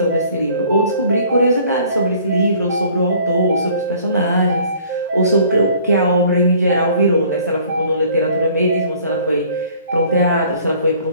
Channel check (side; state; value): both; inverted; correlation -0.54